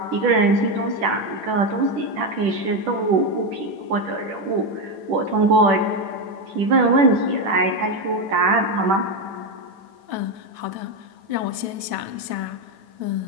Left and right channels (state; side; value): late; left; 9.2 ms